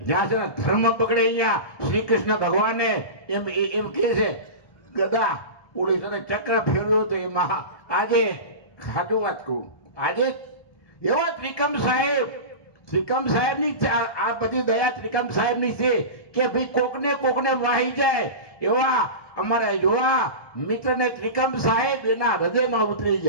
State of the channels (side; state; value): right; late; 1.2 ms